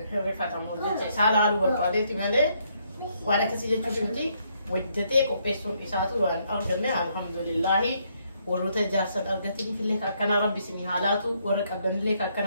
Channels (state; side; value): inverted; both; correlation -0.73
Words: refatamu jadi salah lu berpada itu mana? Wadah kesini tu mesti wajibnya kopesun isatu an alhamdulillah. ورث جاسد أرجعتني في الليك أكنا ربي سمي حالاتو ورك أبدن الليك